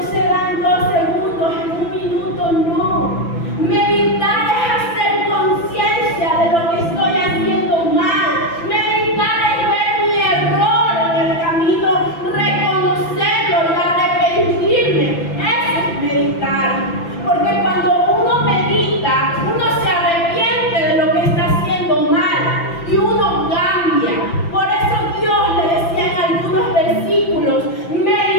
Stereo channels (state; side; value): late; right; 5.9 ms